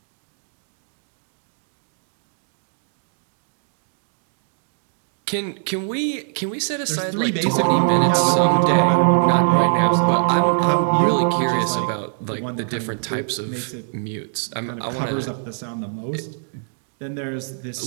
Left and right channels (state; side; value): silent; left; digital silence